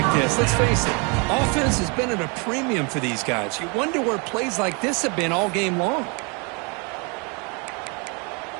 this. Let's face it, offense has been at a premium for these guys. You wonder where plays like this have been all game long.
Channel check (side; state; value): left; quieter; 33.0 dB